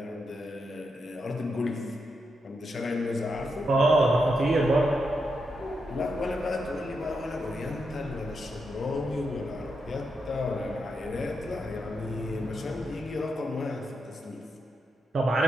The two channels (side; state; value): both; normal; correlation 0.84